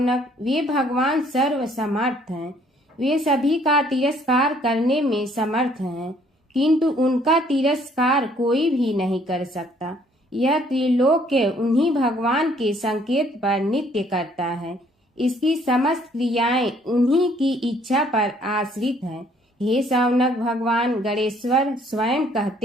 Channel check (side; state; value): both; normal; correlation 0.62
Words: वे भगवान सर्व समर्थ हैं। वे सभी का तिरस्कार करने में समर्थ हैं, किंतु उनका तिरस्कार कोई भी नहीं कर सकता। यह त्रिलोक्य उन्हीं भगवान के संकेत पर नित्य करता है। इसकी समस्त क्रियाएं उन्हीं की इच्छा पर आश्रित हैं। हे शौनक भगवान गणेश्वर स्वयं